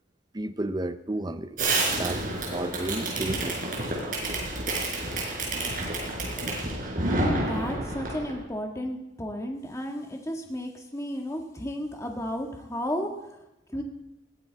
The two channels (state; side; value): normal; both; correlation 0.48